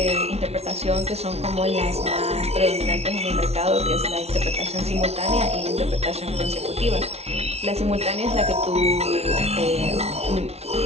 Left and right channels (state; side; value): late; left; 0.31 ms